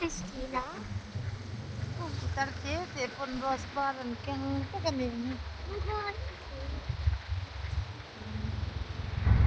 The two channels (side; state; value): both; identical; correlation 1.00